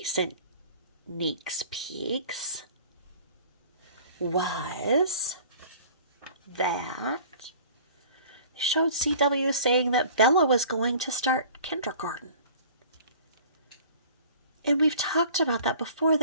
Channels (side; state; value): both; inverted; correlation -0.47